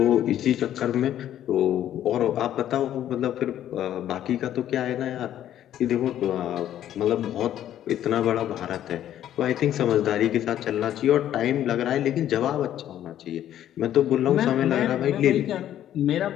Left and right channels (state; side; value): quieter; right; 11.5 dB